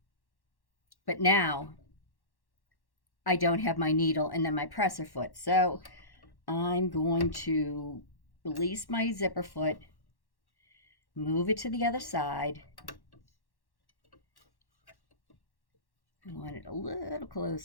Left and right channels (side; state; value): right; late; 1.1 ms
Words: but now I don't have my needle and then my presser foot. So I'm going to release my zipper foot, move it to the other side. I want it a little